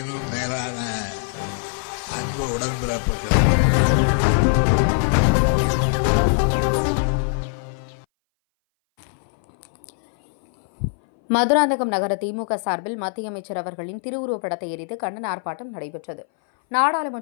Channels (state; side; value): silent; right; 60 dB below the other